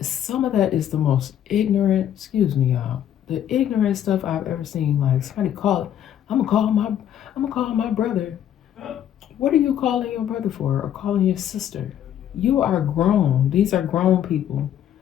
Some of that is the most ignorant, excuse me, y'all, the ignorant stuff I've ever seen. Like somebody I'm gonna call my brother. What are you calling your brother for, or calling your sister? You are grown. These are grown people.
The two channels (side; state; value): right; quieter; 10.4 dB